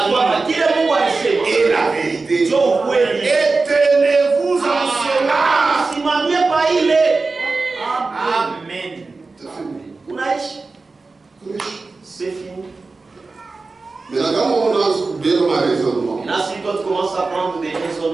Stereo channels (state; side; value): quieter; left; 3.9 dB